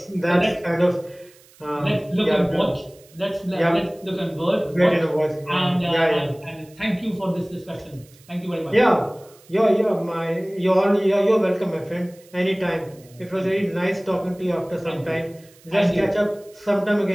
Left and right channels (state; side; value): noise; right; hiss, 27 dB below the sound